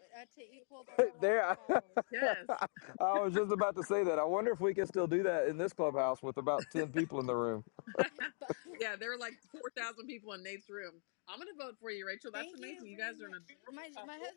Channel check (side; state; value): right; silent; 51 dB below the other